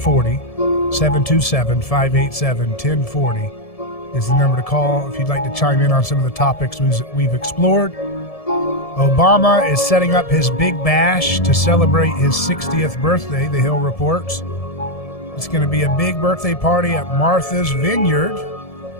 727-587-1040 is the number to call if you'd like to chime in on some of the topics we've explored. Obama is setting up his big bash to celebrate his 60th birthday, the Hill reports. It's going to be a big birthday party at Martha's Vineyard.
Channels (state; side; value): late; right; 1.7 ms